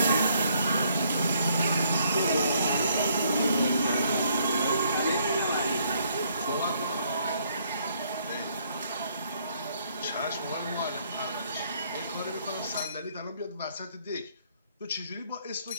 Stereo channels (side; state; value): both; inverted; correlation -0.68